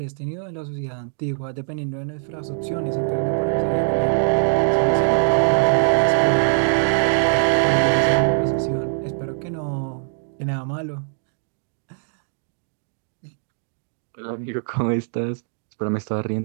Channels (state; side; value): silent; left; digital silence